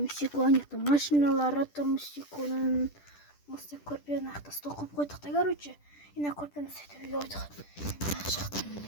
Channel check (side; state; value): right; late; 10 ms